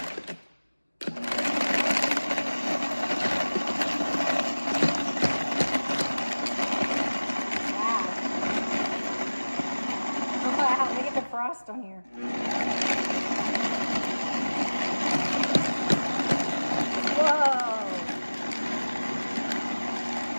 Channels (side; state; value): both; inverted; correlation -1.00